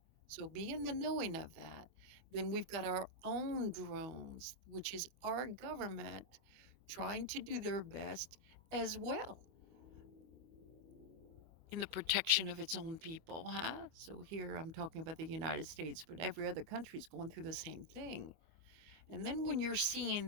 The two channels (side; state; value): left; late; 25 ms